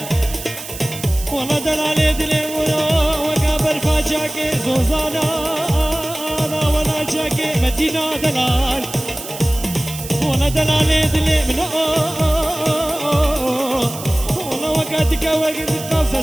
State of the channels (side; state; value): right; noise; hiss, 11 dB below the sound